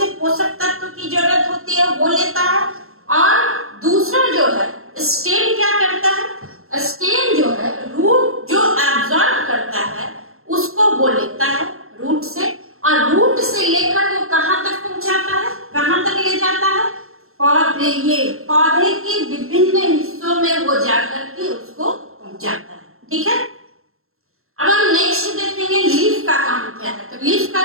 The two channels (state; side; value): late; left; 0.62 ms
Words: पोषक तत्व की जरूरत होती है वो लेता है। और दूसरा जो है स्टेम क्या करता है, स्टेम जो है रूट जो एब्जॉर्ब करता है उसको वो लेता है रूट से, और रूट से लेकर वो कहाँ तक पहुंचाता है, कहाँ तक ले जाता है, पौधे के विभिन्न हिस्सों में वो जाकर के उसको पहुंचाता है। ठीक है, अब हम नेक्स्ट देखेंगे लीफ का काम क्या है। तो लीफ का